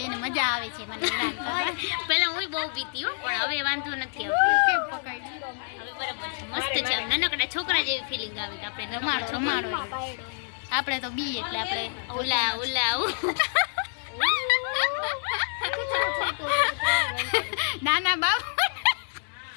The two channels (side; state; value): right; silent; 59 dB below the other